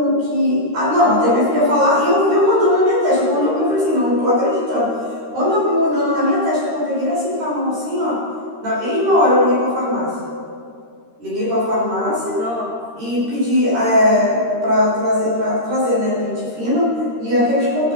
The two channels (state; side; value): late; left; 13 ms